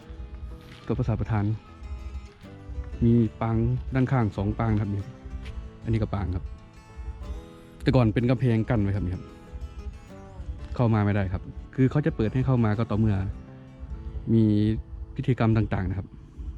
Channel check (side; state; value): both; identical; correlation 1.00